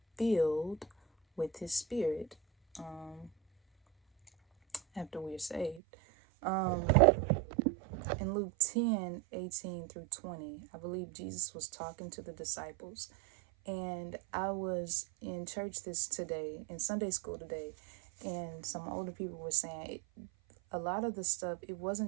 filled with his spirit after we're saved. In Luke 10:18-20, I believe Jesus was talking to the disciples. And I was in church in Sunday school today, and some older people were saying a lot of the stuff, it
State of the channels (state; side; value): drops out; left; at 5.8 s